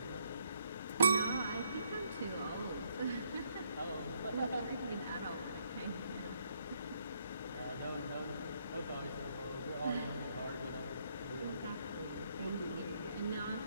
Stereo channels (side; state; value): both; inverted; correlation -0.71